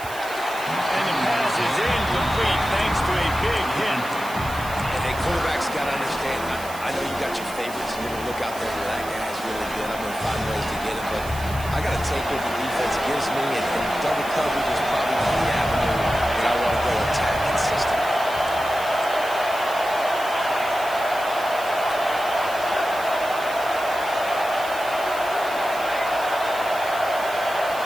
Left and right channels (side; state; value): right; noise; hiss, 15 dB below the sound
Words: And the pass is incomplete thanks to a big hit. And hey, quarterbacks got to understand, I know you got your favorites, and you're going to look out there and that guy's really good. I'm going to find ways to get him, but I got to take what the defense gives me, and double coverage is probably the avenue that I want to go attack consistently.